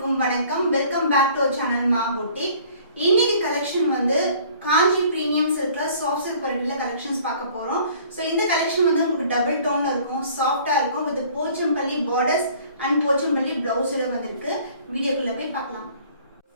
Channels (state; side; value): inverted; both; correlation -0.53